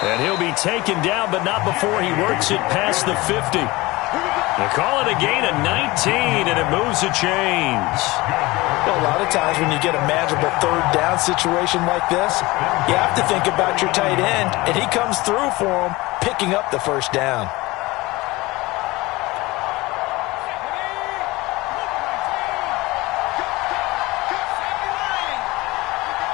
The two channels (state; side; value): quieter; right; 21.3 dB